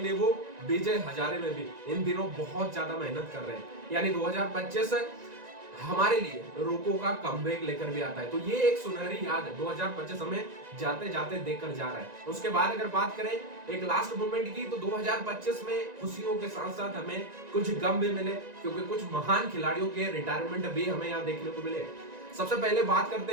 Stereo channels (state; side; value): late; left; 1.9 ms